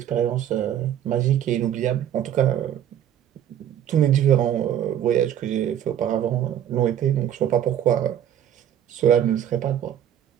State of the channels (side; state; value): left; quieter; 10.4 dB